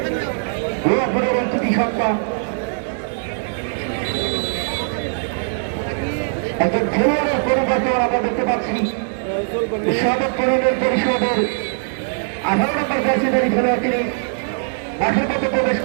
কৃতি সন্তান। একজন খেলোয়াড়ের পরিবর্তন আমরা দেখতে পাচ্ছি সদর পরিণত পরিষদের 18 নম্বর জার্সিধারী খেলোয়াড়, তিনি মাঠের মধ্যে প্রবেশ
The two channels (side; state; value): left; silent; 65 dB below the other